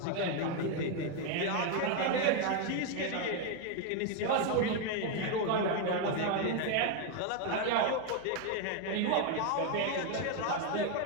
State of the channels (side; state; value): both; different; correlation 0.01